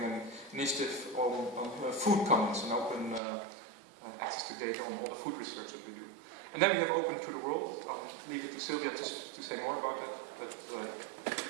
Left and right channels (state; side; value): drops out; left; at 3.2 s